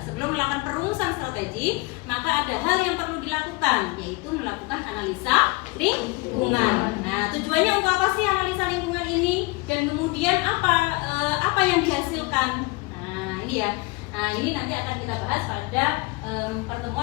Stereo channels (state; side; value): quieter; right; 25.1 dB